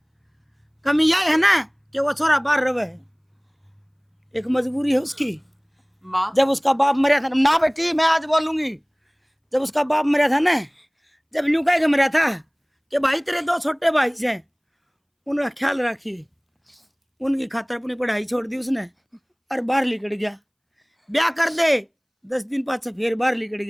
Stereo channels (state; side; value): identical; both; correlation 1.00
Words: कमी यह है ना कि वो छोरा बाहर रहे है, एक मजबूरी है उसकी। माँ। जब उसका बाप मरा था ना बेटी, मैं आज बोलूंगी, जब उसका बाप मरा था ना, जब न्यू कह के मरा था कि भाई तेरे 2 छोटे भाई हैं, उनका ख्याल रखिए। उनकी खातर अपनी पढ़ाई छोड़ दी उसने और बाहर निकल गया। ब्याह कर दे 10 दिन बाद से फिर बाहर निकल